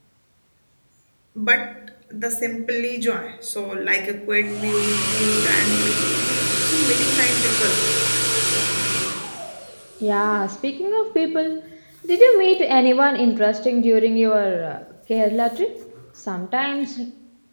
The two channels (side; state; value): both; inverted; correlation -1.00